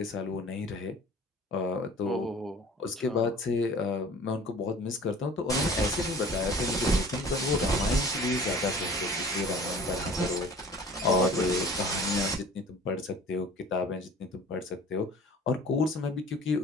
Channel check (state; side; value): normal; both; correlation 0.45